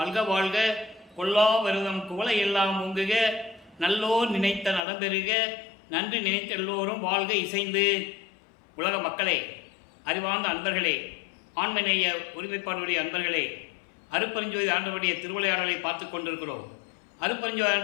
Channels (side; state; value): right; drops out; at 4.8 s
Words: வாழ்க, கொல்லா வருதம் குவளை எல்லாம் ஓங்குக, நல்லோர் நினைத்த நலம்பெறுக, நன்றி நினைத்த எல்லோரும் வாழ்க இசைந்து. உலக மக்களே, அறிவார்ந்த அன்பர்களே, ஆண்மநேய ஒருமைப்பாடுடைய அன்பர்களே, அருட்பெருஞ்சோதி ஆண்டவருடைய திருவிளையாடலை பார்த்து கொண்டிருக்கிறோம். அருட்பெருஞ்சோதி